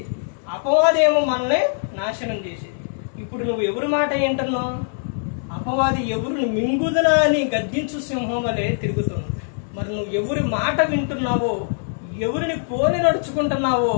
అపవాదేమో మనల్ని నాశనం చేసేది. ఇప్పుడు నువ్వు ఎవరి మాట ఏంటన్నావు? అపవాది ఎవరిని మింగుదనా అని గద్దించు సింహం వలె తిరుగుతుంది. మరి నువ్వు ఎవరి మాట వింటున్నావో, ఎవరిని పోలి నడుచుకుంటున్నావో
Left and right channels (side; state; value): right; silent; digital silence